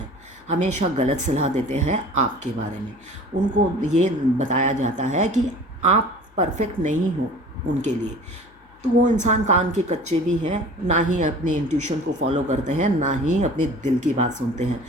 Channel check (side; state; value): left; noise; hum, 29 dB below the sound